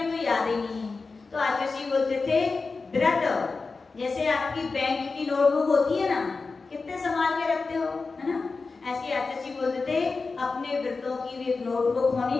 तो याद ही नहीं है। तो आचार्य बोलते थे व्रत, जैसे आपकी बैंक की नोटबुक होती है ना, कितने संभाल के रखते हो, है ना, ऐसे आचार्य बोलते थे अपने व्रतों की भी एक नोटबुक होनी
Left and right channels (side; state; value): right; quieter; 4.2 dB